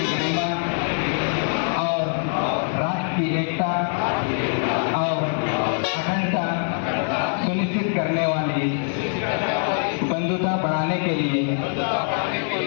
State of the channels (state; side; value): silent; right; 57 dB below the other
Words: गरिमा और राष्ट्र की एकता और अखंडता सुनिश्चित करने वाली बंधुता बढ़ाने के लिए